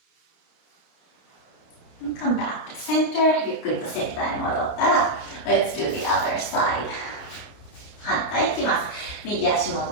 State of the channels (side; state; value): right; late; 29 ms